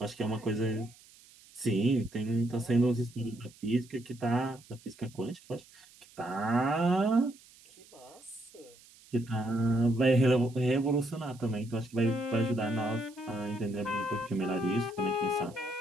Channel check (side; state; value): right; noise; hiss, 25 dB below the sound